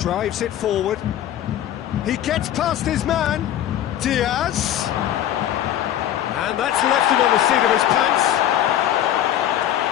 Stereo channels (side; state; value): right; quieter; 11.6 dB